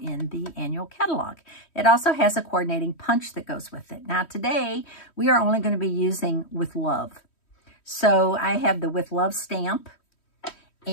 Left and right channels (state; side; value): late; right; 3.1 ms